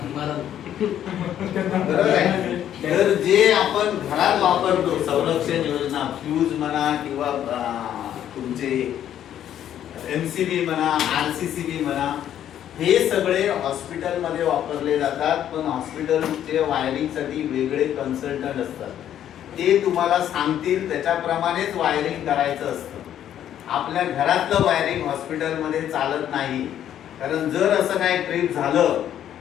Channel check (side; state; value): right; quieter; 10.7 dB